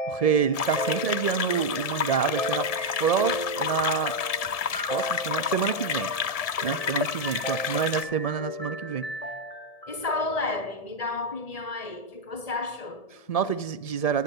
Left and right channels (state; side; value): late; right; 1.7 ms